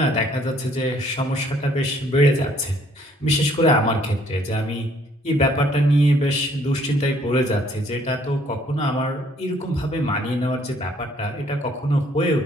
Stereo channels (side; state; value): both; normal; correlation 0.63